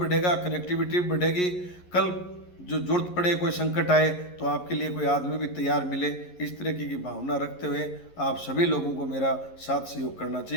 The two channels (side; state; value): right; late; 11 ms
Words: कनेक्टिविटी भी बढ़ेगी। कल जो जरूरत पड़े, कोई संकट आए, तो आपके लिए कोई आदमी भी तैयार मिले। इस तरीके की भावना रखते हुए आप सभी लोगों को मेरा साथ सहयोग करना